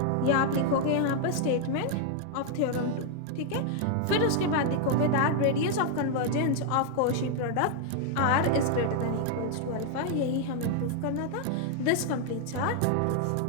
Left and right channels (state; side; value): different; both; correlation 0.00